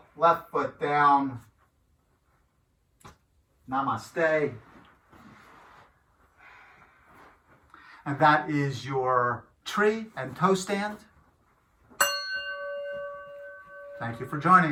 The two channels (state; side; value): identical; both; correlation 1.00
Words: left foot down. Namaste. And that is your tree and toe stand. Thank you for joining